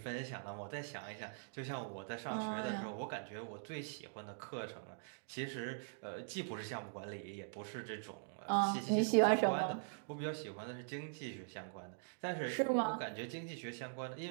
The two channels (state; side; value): silent; left; digital silence